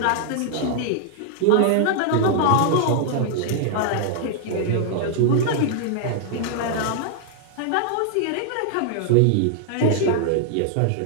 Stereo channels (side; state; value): both; different; correlation -0.01